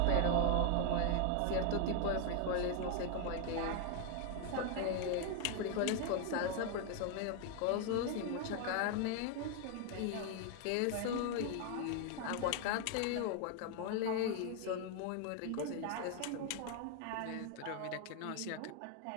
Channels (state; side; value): different; both; correlation 0.01